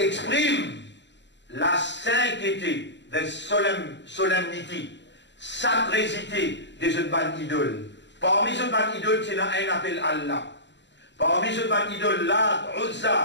la sainteté de solennité, sacrésité des autres ban idoles. Parmi les ban idoles, il y a un appel Allah. Parmi les ban idoles, Lat,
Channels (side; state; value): right; late; 0.52 ms